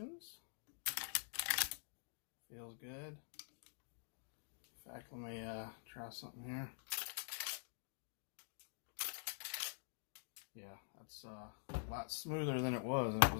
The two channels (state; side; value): silent; right; digital silence